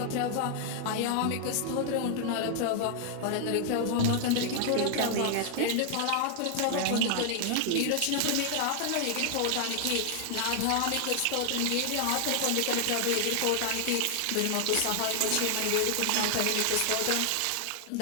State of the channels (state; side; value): different; both; correlation 0.00